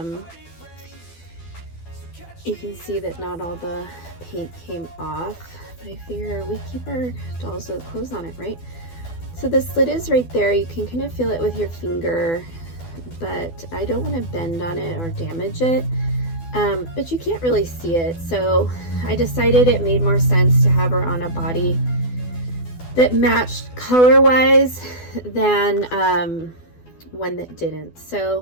You can see that not all the paint came off, but I figure we keep our dolls with clothes on it, right? So the slit is right there. You can kind of feel it with your finger, but I don't want to bend on it or damage it. But you can't really see it. So I decided it made more sense to have her on a body that matched color-wise than one that didn't.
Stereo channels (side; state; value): right; late; 12 ms